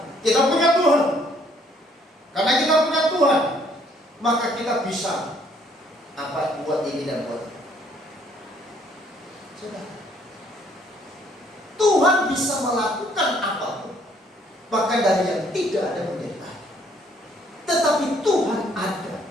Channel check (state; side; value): normal; both; correlation 0.64